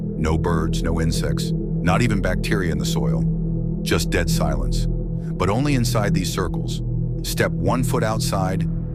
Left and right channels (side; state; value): both; identical; correlation 1.00